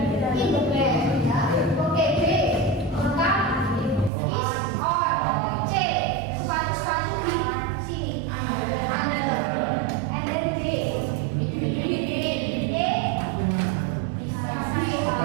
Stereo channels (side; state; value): left; drops out; at 4.1 s